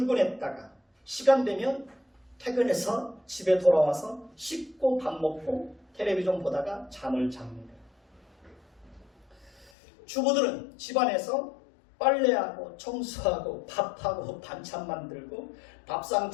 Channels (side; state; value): right; drops out; at 9.7 s